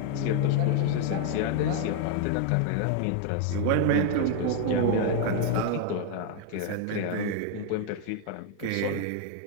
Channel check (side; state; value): both; different; correlation 0.00